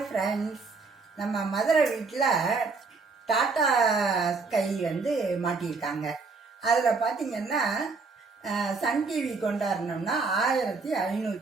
ஃப்ரெண்ட்ஸ், நம்ம மதுரை வீட்டில் டாட்டா ஸ்கை மாட்டியிருக்காங்க. அதில் பார்த்தீங்கன்னா சன் டிவி கொண்டாடணும்னா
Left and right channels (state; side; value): quieter; left; 4.4 dB